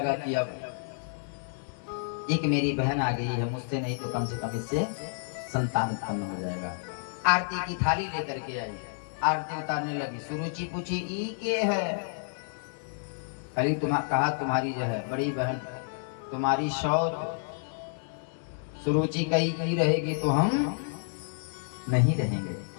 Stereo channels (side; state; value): right; silent; 57 dB below the other